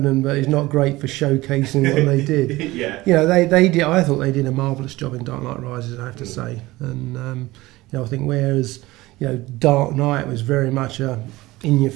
but is not great for showcasing what they did. Yeah. They did. I thought they did a marvelous job in Dark Knight Rises, I have to say, and I think whereas Dark Knight was very much a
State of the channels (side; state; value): left; quieter; 19.2 dB